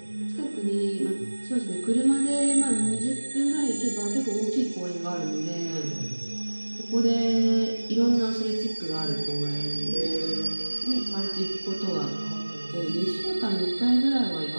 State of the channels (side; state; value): both; inverted; correlation -1.00